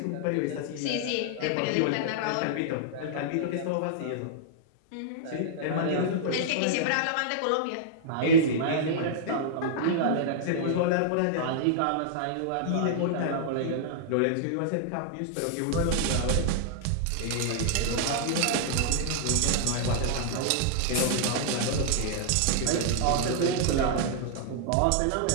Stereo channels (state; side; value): different; both; correlation -0.01